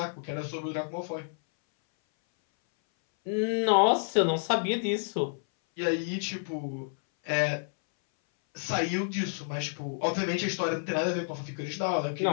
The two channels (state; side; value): silent; right; 58 dB below the other